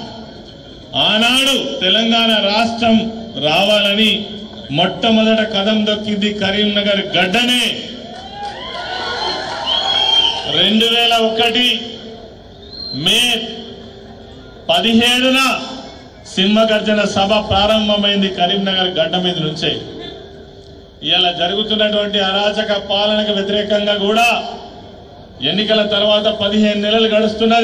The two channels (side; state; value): both; identical; correlation 1.00